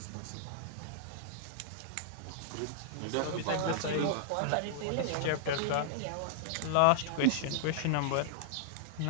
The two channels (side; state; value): both; different; correlation -0.01